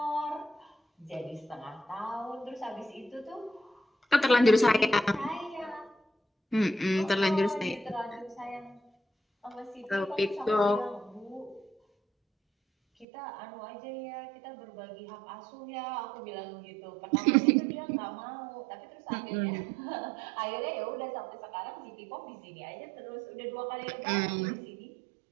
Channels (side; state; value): left; drops out; at 13.1 s